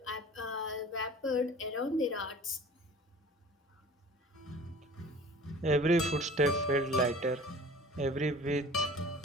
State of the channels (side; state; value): both; normal; correlation 0.44